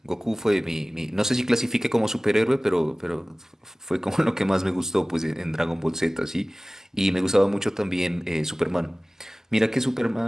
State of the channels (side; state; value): both; normal; correlation 0.98